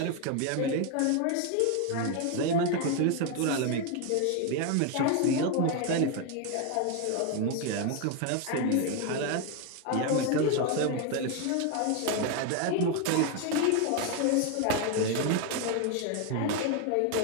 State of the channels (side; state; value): both; different; correlation 0.01